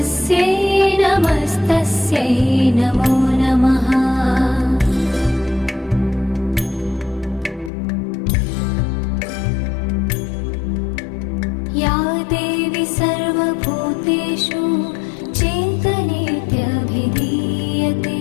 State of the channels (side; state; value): right; drops out; at 7.7 s